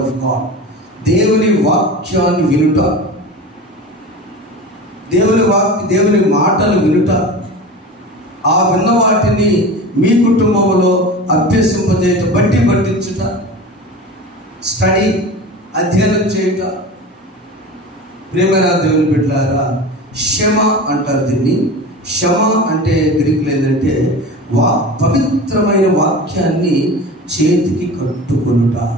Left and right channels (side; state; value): both; normal; correlation 0.32